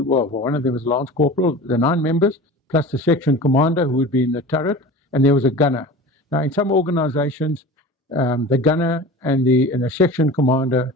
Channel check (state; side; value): normal; both; correlation 0.36